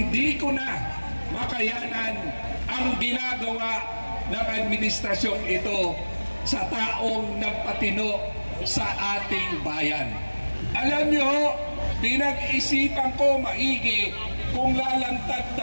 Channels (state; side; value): inverted; both; correlation -1.00